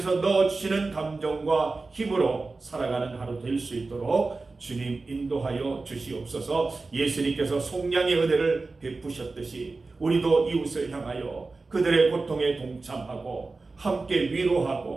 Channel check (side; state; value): left; quieter; 3.7 dB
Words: 넣어주시는 감정과 힘으로 살아가는 하루 될 수 있도록 주님 인도하여 주시옵소서. 예수님께서 속량의 은혜를 베푸셨듯이 우리도 이웃을 향하여 그들의 고통에 동참하고 함께